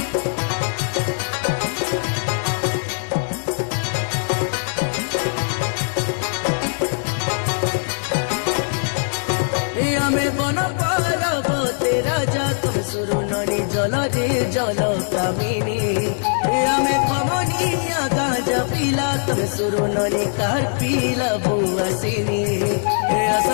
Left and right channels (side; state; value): right; silent; digital silence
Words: बन पारब तेरा जा तुम सुरु ननी जल रे जल कामिनी आमे खमनिया गांजा पीला तुम सुरु ननी कार पीला बुआसिनी